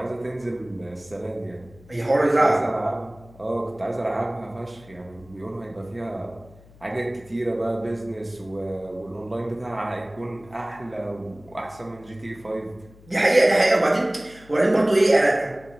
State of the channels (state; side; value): noise; left; hum, 24 dB below the sound